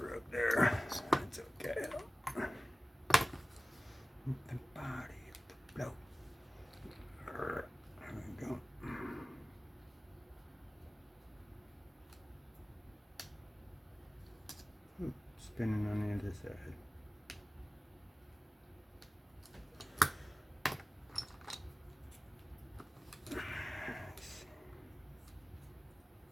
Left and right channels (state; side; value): normal; both; correlation 0.97